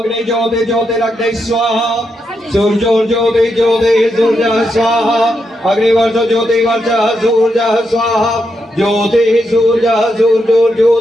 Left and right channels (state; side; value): normal; both; correlation 0.83